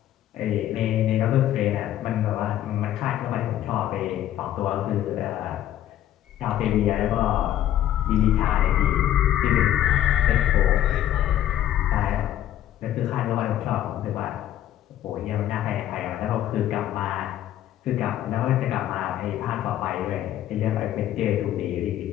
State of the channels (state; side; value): quieter; right; 12.1 dB